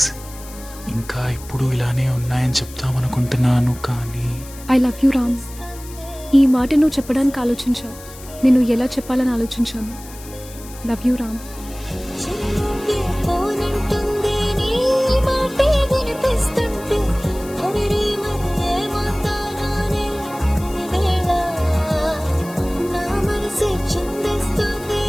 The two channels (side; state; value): left; noise; hiss, 18 dB below the sound